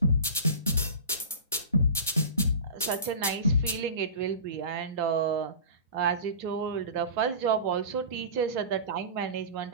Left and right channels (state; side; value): inverted; both; correlation -0.33